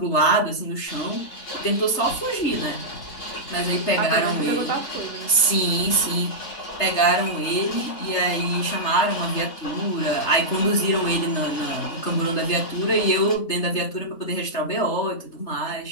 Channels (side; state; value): right; late; 3.3 ms